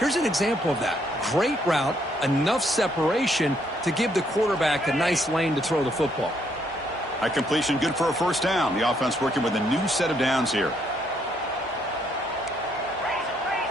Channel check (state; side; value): normal; both; correlation 0.71